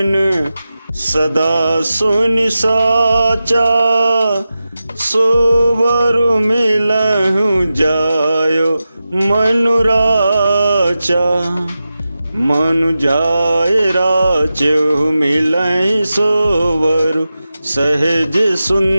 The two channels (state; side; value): inverted; both; correlation -0.92